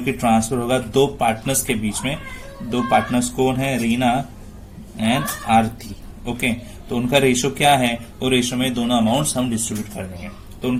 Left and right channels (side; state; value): both; identical; correlation 1.00